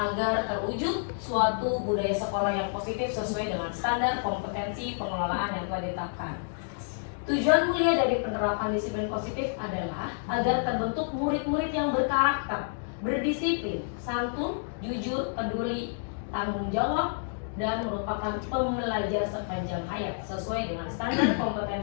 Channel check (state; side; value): silent; right; digital silence